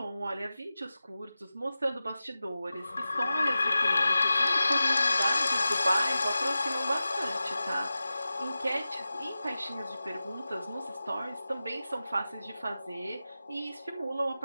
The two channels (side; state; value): both; inverted; correlation -0.94